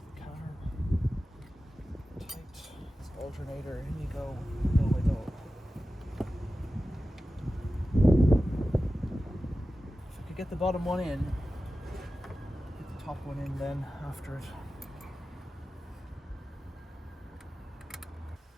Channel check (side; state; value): both; normal; correlation 0.94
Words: the car. Tight. This alternator, in you go. Oh my god. If I could get the bottom one in, get the top one in then after it.